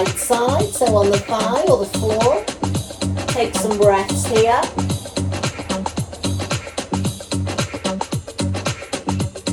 side, so on the thigh or the floor. Take some breaths here.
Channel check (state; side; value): identical; both; correlation 1.00